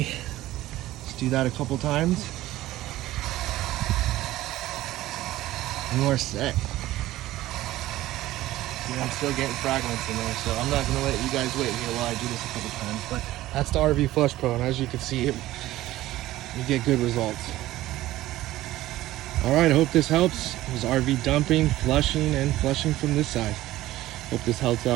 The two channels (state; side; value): quieter; left; 15.8 dB